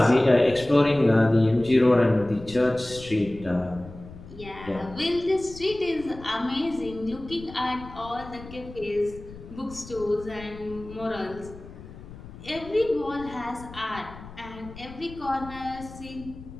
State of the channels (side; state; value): left; noise; rumble, 16 dB below the sound